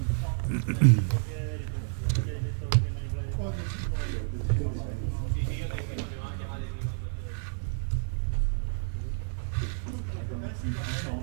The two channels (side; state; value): left; silent; 58 dB below the other